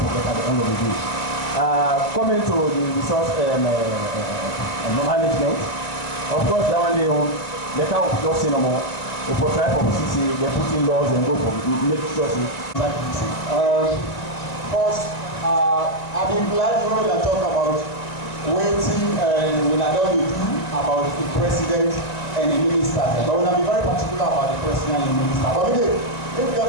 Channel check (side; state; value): right; late; 1.9 ms